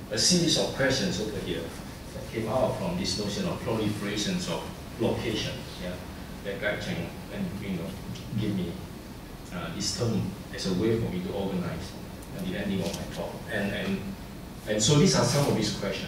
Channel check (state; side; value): identical; both; correlation 1.00